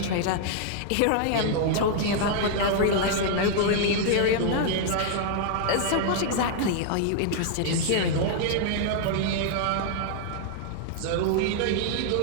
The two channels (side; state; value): both; different; correlation 0.00